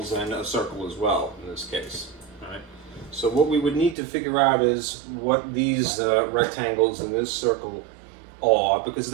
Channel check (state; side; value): drops out; left; at 4.0 s